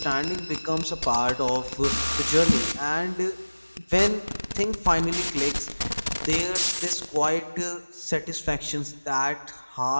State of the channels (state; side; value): inverted; both; correlation -1.00